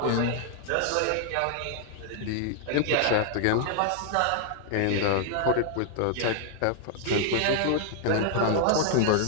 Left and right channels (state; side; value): different; both; correlation 0.00